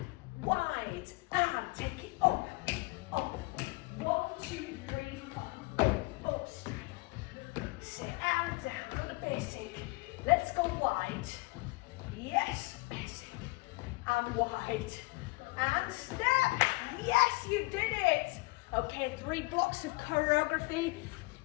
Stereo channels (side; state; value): right; quieter; 24.6 dB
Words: wide and take it up. 1, 2, 3, 4. Up, sit and down. Got the basic. Let's go wide. Yes, basic and wide and step. Yes, you did it. Okay, 3 blocks of choreography.